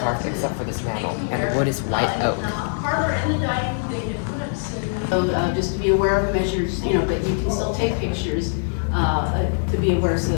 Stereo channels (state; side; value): silent; right; digital silence